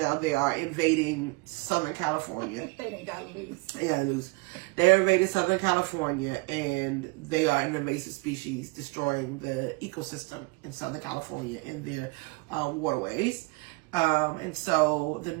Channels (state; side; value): quieter; left; 26.2 dB